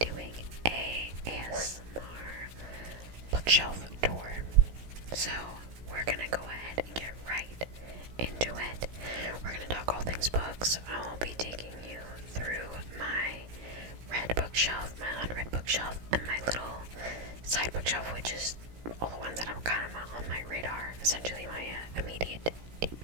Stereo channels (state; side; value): late; left; 17 ms